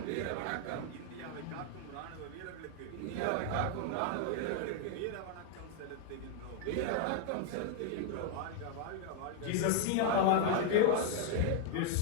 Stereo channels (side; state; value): both; different; correlation 0.00